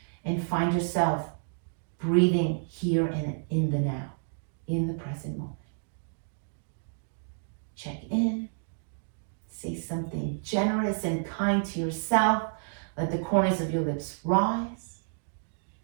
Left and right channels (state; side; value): silent; left; digital silence